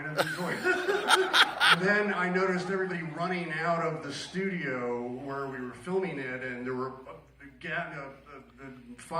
of enjoyed it. And then I noticed everybody running out of the studio where we were filming it, and there were the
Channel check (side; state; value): both; identical; correlation 1.00